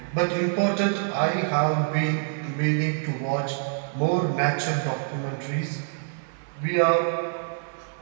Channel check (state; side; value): silent; left; digital silence